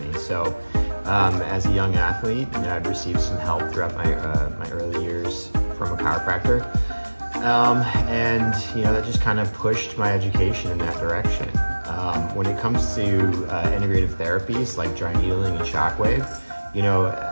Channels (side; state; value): both; inverted; correlation -1.00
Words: me. So as a young athlete, I'd received some help throughout my early years from a chiropractor. That just kind of pushed my education in that direction. When it comes to integrative therapies like dry needling and shockwave,